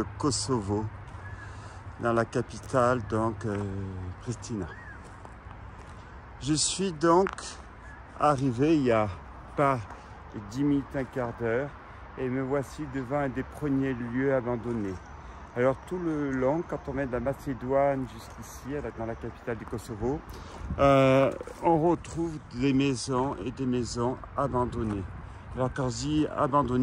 Kosovo, dans la capitale donc Pristina. Je suis donc arrivé il n'y a pas 10 minutes, un quart d'heure, et me voici devant un des premiers lieux abandonnés. Alors tout le long, quand on vient de la Macédoine jusqu'ici, dans la capitale du Kosovo, on retrouve des maisons et des maisons abandonnées. Alors quand je dis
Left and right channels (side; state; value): both; identical; correlation 1.00